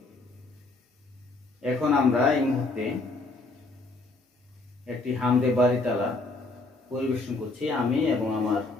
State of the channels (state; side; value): quieter; right; 3.3 dB